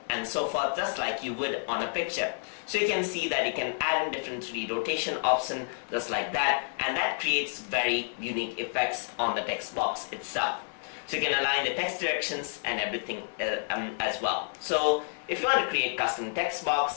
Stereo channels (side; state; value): right; silent; digital silence